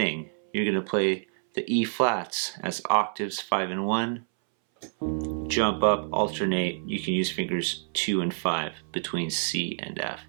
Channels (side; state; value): left; silent; 60 dB below the other